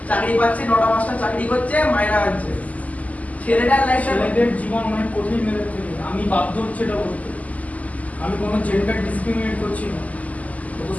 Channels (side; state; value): right; late; 0.074 ms